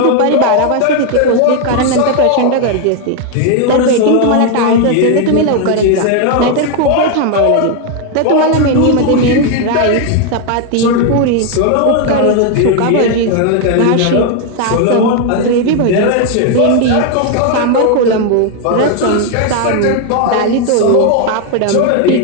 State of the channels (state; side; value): different; both; correlation 0.01